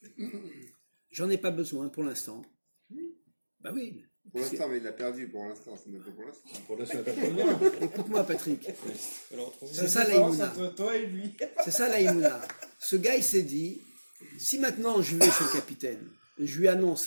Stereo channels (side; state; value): both; inverted; correlation -1.00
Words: j'en ai pas besoin pour l'instant. Bah oui. Pour l'instant, mais il l'a perdu pour l'instant. C'est même pas pour l'instant. Pour l'instant, il n'y a pas de Écoute-moi, Patrick. C'est ça l'Aïmouna. Entre toi et lui. C'est ça l'Aïmouna. Ce gars, il s'est dit, si maintenant je vais chez le capitaine, je lui